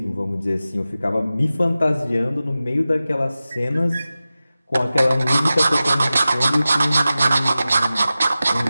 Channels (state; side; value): inverted; both; correlation -0.95